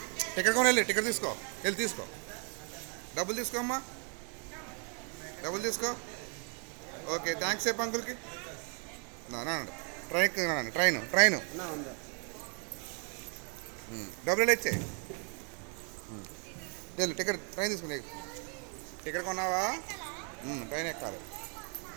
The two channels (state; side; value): quieter; left; 39.5 dB